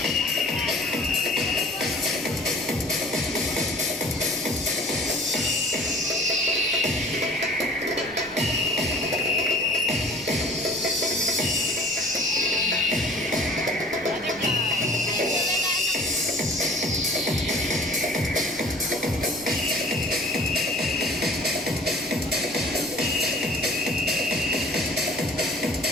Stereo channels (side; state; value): left; noise; rumble, 24 dB below the sound